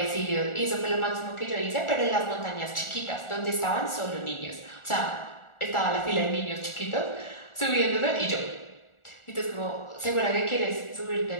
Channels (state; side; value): late; right; 1.4 ms